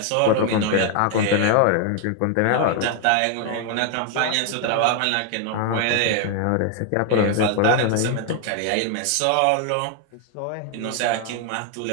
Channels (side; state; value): both; different; correlation 0.01